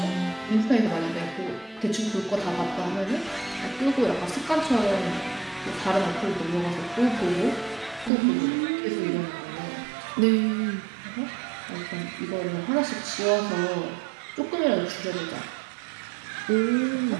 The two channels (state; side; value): drops out; left; at 8.1 s